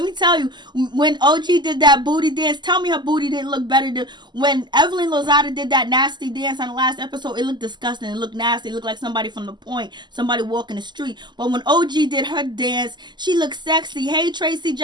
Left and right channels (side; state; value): left; late; 0.21 ms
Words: me tell you, when OG did that booty dance, tell me her booty didn't look better than when Evelyn Lozada did that nasty dance on the last episode. It looked disgusting. It looked nasty. It looked like somebody from the point, somebody walking the street. But when OG did her dance, she looked sexy. Hey, Tracy